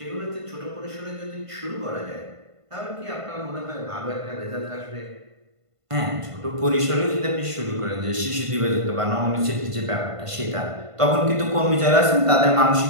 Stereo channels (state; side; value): late; left; 1.5 ms